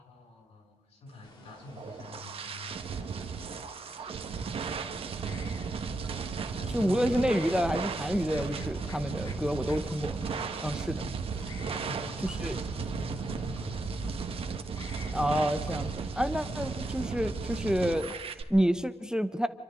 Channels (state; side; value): normal; both; correlation 0.85